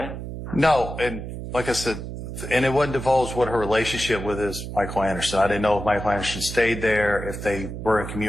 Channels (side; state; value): right; noise; hum, 8 dB below the sound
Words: No, and like I said, and it wasn't divulged what her relationship with is Michael Anderson. I didn't know if Michael Anderson stayed there, if they were in